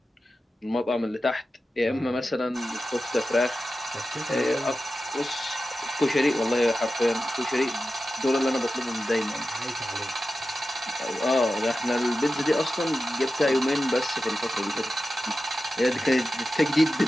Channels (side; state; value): both; normal; correlation 0.93